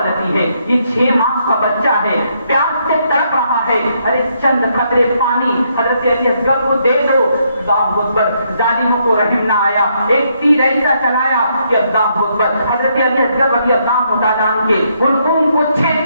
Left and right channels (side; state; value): both; inverted; correlation -0.74